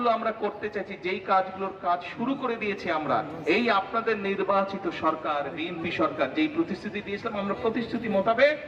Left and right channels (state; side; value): identical; both; correlation 1.00